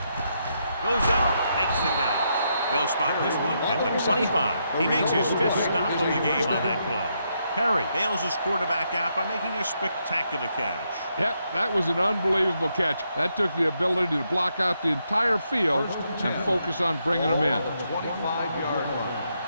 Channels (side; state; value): both; inverted; correlation -0.79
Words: Goes up. Makes the catch. They'll spot this one at the 25. He makes his 5th stop of the game on that play. Perry bails his quarterback out by making a spectacular catch. Yep, that was an unbelievable catch. That took the ability to block out the entire field and focus on bringing them in. 25-yard line.